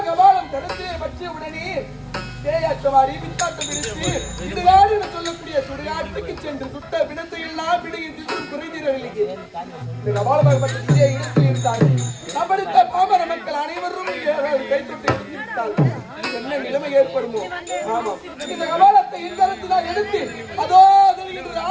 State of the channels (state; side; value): identical; both; correlation 1.00